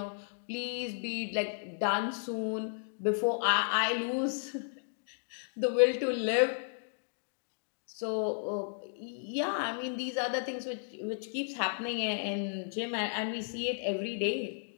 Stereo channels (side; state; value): right; silent; digital silence